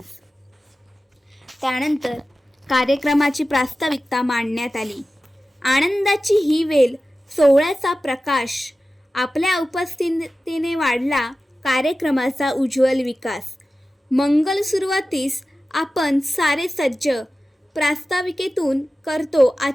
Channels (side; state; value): both; normal; correlation 0.95